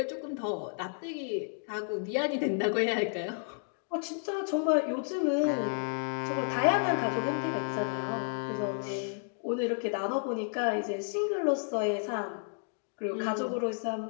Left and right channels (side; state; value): right; silent; digital silence